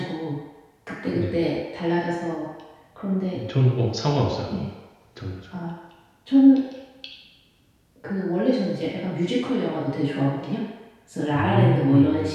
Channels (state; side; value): identical; both; correlation 1.00